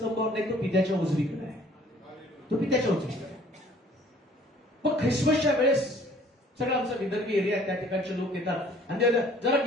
नाही, तो पित्याच्या उजवीकडे आहे. तो पित्याच्या उजवीकडे आहे. मग ख्रिसमसच्या वेळेस सगळं आमचा विदर्भी एरिया आहे, त्या ठिकाणचे लोक येतात आणि जरा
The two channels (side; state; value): both; normal; correlation 0.56